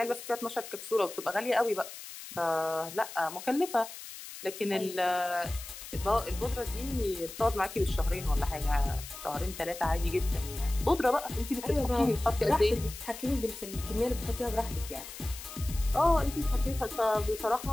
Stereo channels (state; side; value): noise; left; hiss, 12 dB below the sound